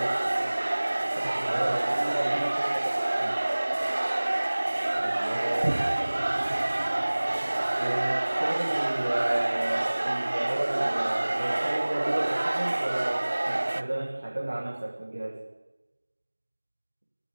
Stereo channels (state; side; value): inverted; both; correlation -1.00